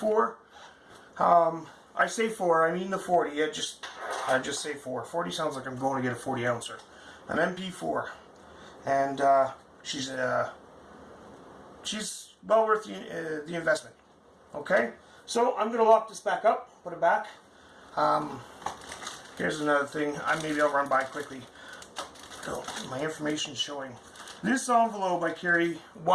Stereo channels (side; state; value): both; identical; correlation 1.00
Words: I say 4, I mean the 40. I just say 4. 40 sounds like I'm going to get a 40 ouncer. An MP4, and she's well worth the investment. Okay, so I'm going to lock this back up, put it back. Here's another thing. Maybe I'll run by quickly. So my information showing. This envelope I carry